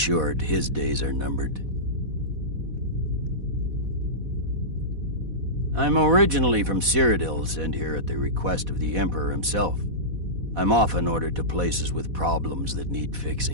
his days are numbered. I'm originally from Cyrodiil, sent here at the request of the Emperor himself. I'm often ordered to places with problems that need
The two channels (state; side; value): late; left; 4.1 ms